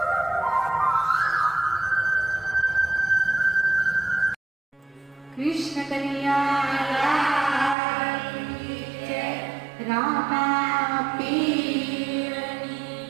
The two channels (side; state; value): left; drops out; at 7.8 s